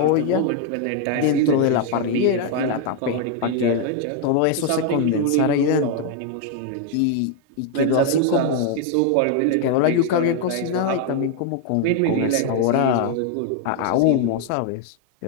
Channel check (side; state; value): both; different; correlation 0.00